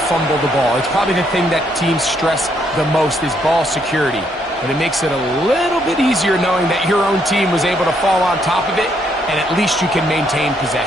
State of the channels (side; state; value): both; normal; correlation 0.72